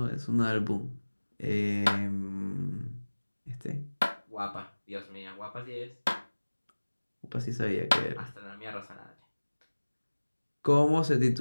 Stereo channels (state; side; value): inverted; both; correlation -1.00